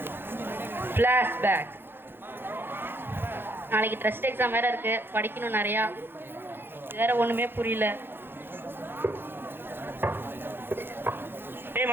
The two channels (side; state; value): left; late; 0.10 ms